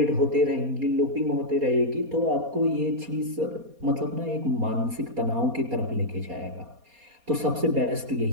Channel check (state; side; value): late; left; 4.2 ms